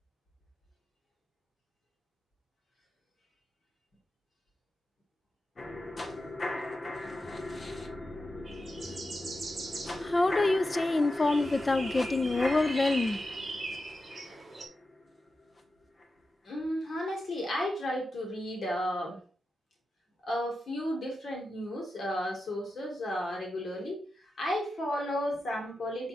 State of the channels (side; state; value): both; normal; correlation 0.90